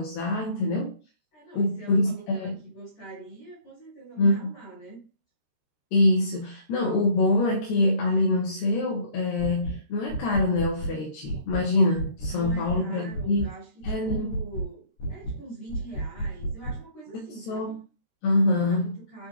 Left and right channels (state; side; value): late; right; 13 ms